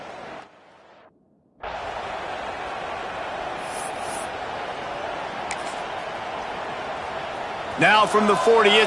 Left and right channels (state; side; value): identical; both; correlation 1.00